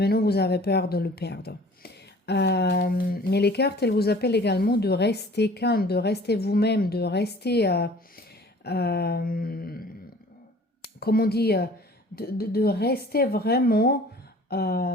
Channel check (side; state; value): both; normal; correlation 0.49